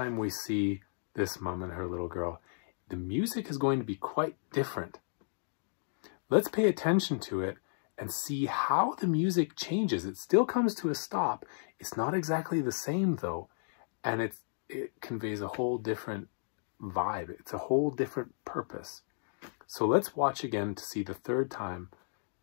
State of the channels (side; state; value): right; silent; digital silence